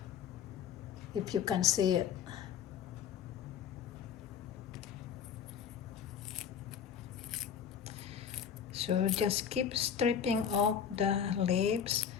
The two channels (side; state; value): right; quieter; 8.0 dB